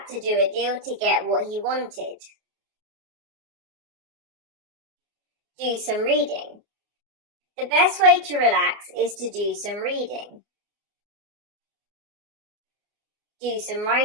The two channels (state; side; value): late; left; 29 ms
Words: to do a deal to get what he wanted. Do some reading. The best way to relax is to do some reading. Do some